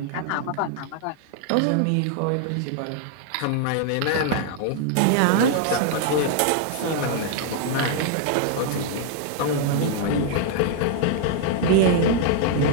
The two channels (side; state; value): both; different; correlation 0.00